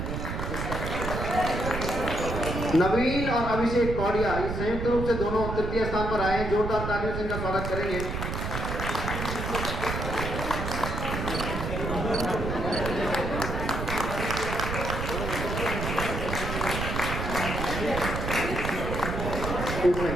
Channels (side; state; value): right; noise; rumble, 3 dB below the sound